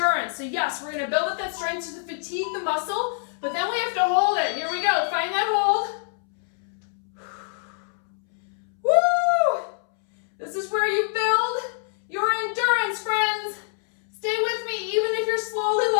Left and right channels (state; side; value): silent; right; 62 dB below the other